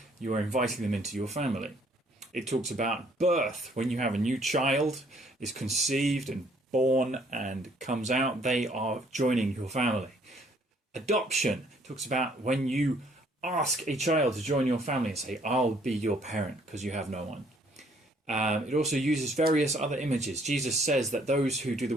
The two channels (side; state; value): both; normal; correlation 0.63